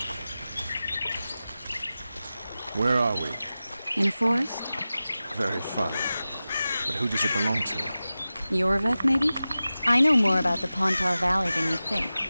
Where are we? In a forest? Very funny. But who does it belong to? Yorveth, maybe? I know more about the Pontar Valley than you think.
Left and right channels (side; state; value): both; inverted; correlation -0.95